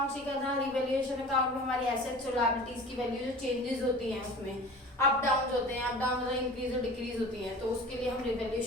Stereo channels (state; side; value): normal; both; correlation 0.40